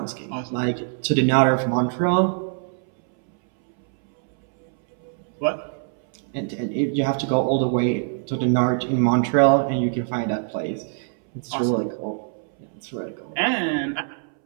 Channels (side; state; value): left; silent; 63 dB below the other